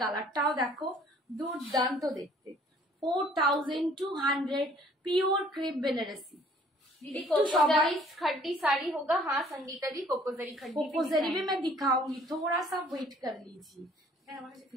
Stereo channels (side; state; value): both; normal; correlation 0.57